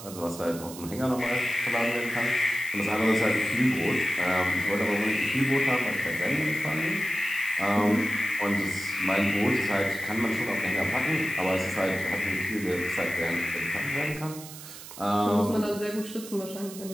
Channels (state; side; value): noise; right; hiss, 14 dB below the sound